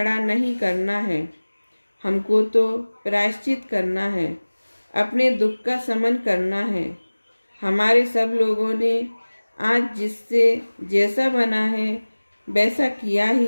नहीं करना है, हमको तो प्रायश्चित करना है, अपने दुख का शमन करना है। हमारे सब लोगों ने आज जिससे जैसा बना है वैसा किया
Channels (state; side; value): inverted; both; correlation -1.00